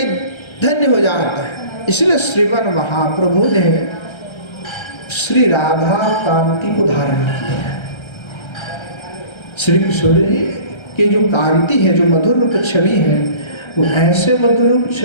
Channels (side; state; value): right; late; 1.3 ms